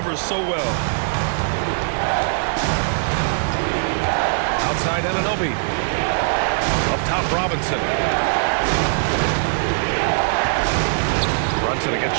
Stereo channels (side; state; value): left; silent; digital silence